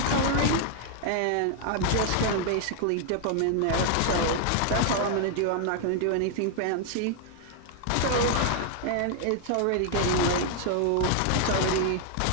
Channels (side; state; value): both; different; correlation 0.00